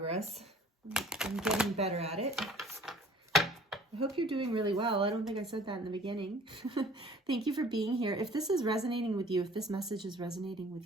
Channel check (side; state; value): both; normal; correlation 0.50